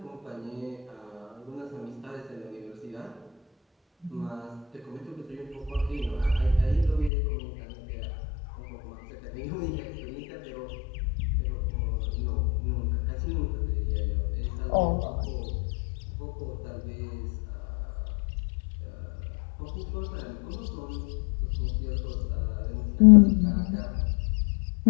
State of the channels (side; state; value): right; drops out; at 7.1 s